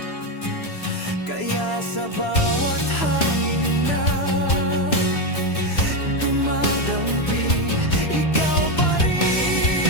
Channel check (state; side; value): late; right; 3.0 ms